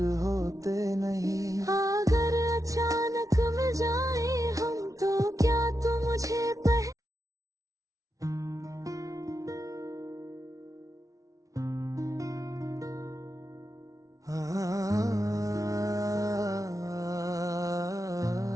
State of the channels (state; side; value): late; left; 0.17 ms